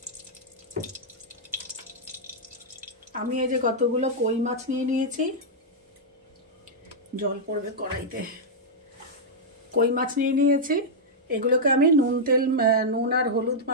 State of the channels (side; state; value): both; normal; correlation -0.07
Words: আমি এই যে কতগুলো কই মাছ নিয়ে নিয়েছি, জল পড়বে কড়াইতে। কই মাছ নিয়ে নিয়েছি, এগুলোকে আমি নুন আর হলুদ